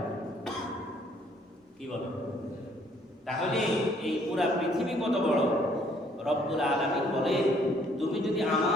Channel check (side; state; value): both; normal; correlation 0.63